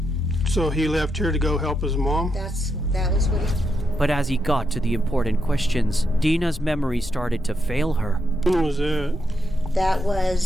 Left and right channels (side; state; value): both; normal; correlation 0.82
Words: So he left here to go help his mom? That was what he... But as he got to the important questions, Dina's memory started to fail her. When was that? That